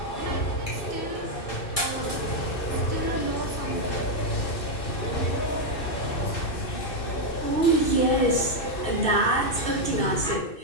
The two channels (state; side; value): late; right; 2.6 ms